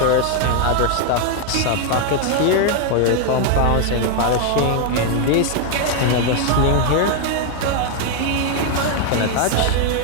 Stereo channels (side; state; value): both; different; correlation 0.00